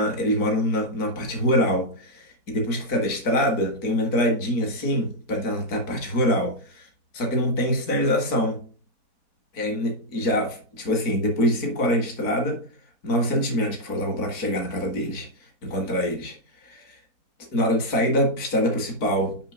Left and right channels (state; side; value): late; right; 4.5 ms